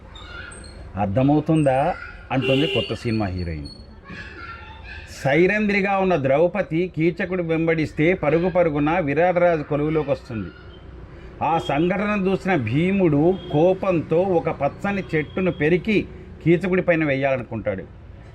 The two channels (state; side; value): identical; both; correlation 1.00